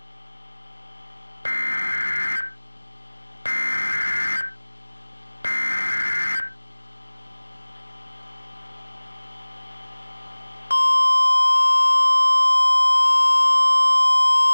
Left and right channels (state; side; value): inverted; both; correlation -1.00